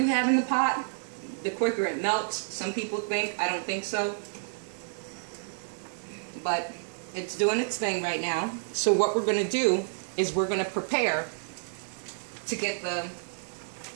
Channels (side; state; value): left; silent; digital silence